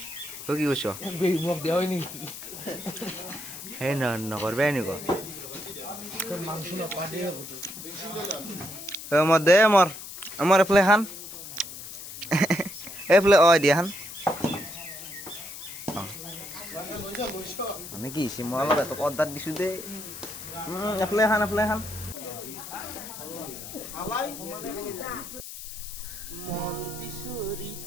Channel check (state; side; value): noise; left; hiss, 11 dB below the sound